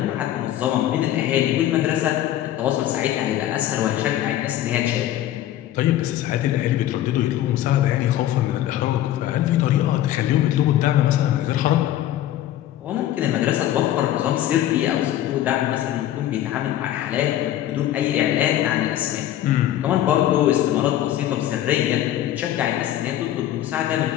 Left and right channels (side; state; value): right; quieter; 12.8 dB